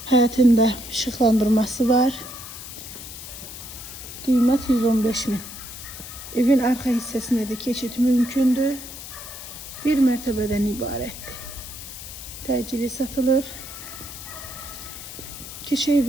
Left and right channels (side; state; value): left; noise; hiss, 12 dB below the sound